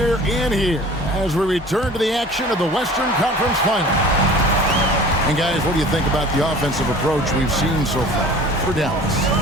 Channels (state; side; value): normal; both; correlation 0.44